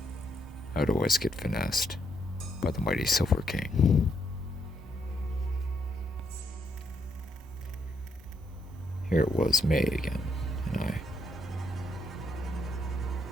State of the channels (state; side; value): normal; both; correlation 0.75